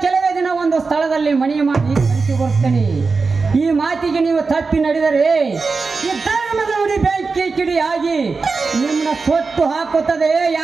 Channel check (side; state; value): left; quieter; 4.4 dB